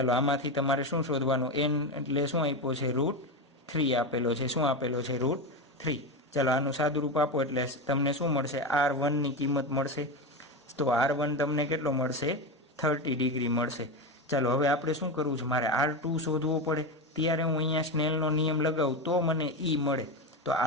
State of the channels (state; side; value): normal; both; correlation 0.17